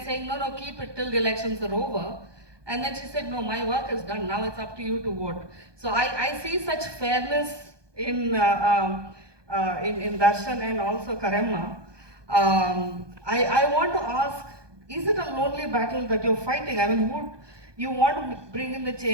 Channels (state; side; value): late; left; 1.2 ms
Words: saying, no, keep it till the elections are over. And then she said, no, my work is done, now it's up to you to vote. So I see such fairness in Darshan and also Karema. I want to ask, is it a lonely battle that you're fighting? I mean, you want to bring in the